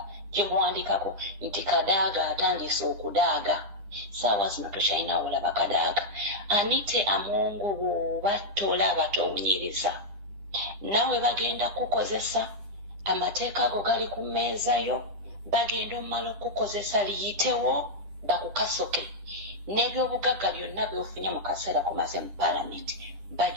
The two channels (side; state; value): left; late; 10 ms